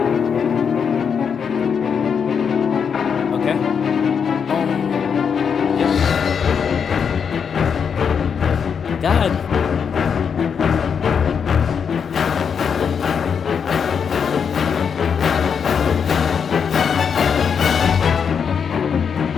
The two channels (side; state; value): right; quieter; 6.8 dB